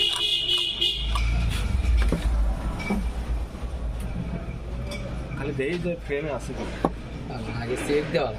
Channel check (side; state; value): both; identical; correlation 1.00